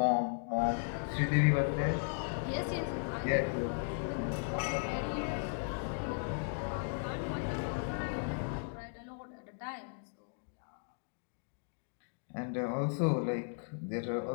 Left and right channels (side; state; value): right; silent; digital silence